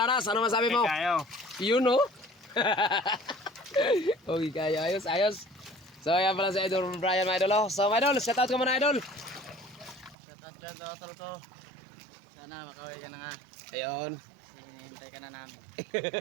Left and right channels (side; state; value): left; drops out; at 10.2 s